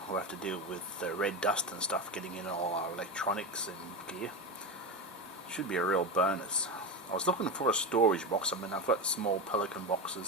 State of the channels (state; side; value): normal; both; correlation 0.18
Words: who have to deal with red dust and stuff getting in all our electronics and gear, should be a real bonus. I was looking for a storage box. I mean, I've got small Pelican